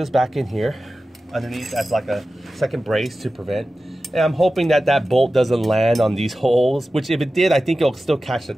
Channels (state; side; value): normal; both; correlation 0.94